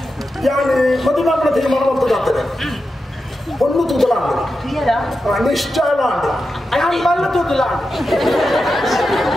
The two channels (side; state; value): both; normal; correlation 0.90